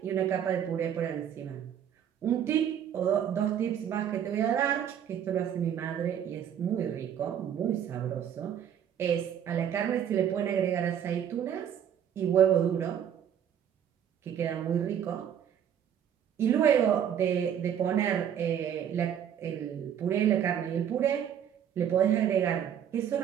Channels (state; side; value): quieter; left; 9.2 dB